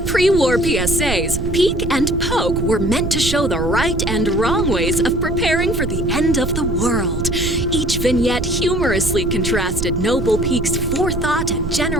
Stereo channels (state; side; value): noise; right; rumble, 5 dB below the sound